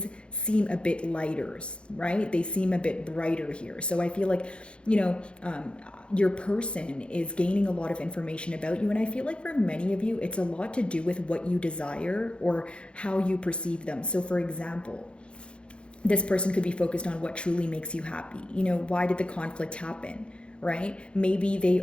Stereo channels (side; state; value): right; late; 0.057 ms